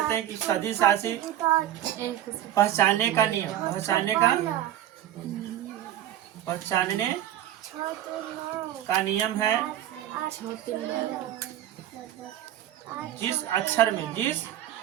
हैं कि सदिश राशि पहचानने का नियम है। जिस अक्षर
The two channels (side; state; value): left; quieter; 12.2 dB